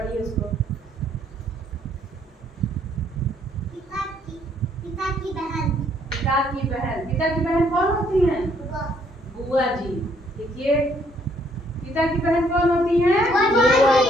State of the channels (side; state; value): both; normal; correlation 0.67